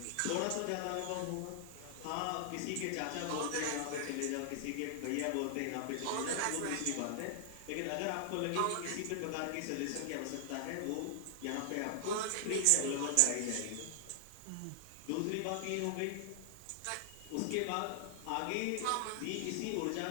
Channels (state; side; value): different; both; correlation 0.00